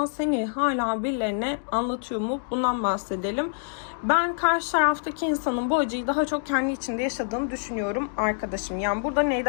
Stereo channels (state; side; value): silent; right; digital silence